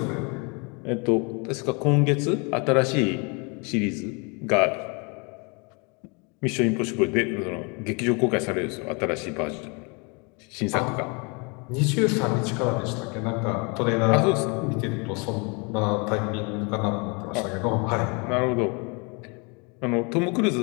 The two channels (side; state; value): right; quieter; 31.9 dB